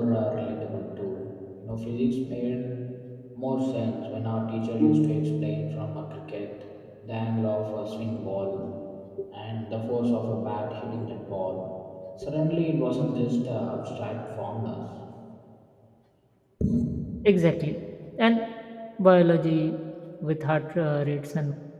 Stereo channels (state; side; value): identical; both; correlation 1.00